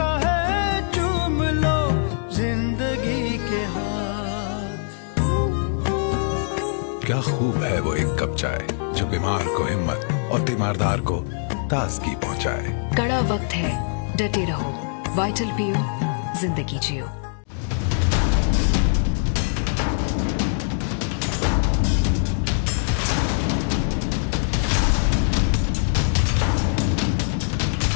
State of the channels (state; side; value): silent; right; digital silence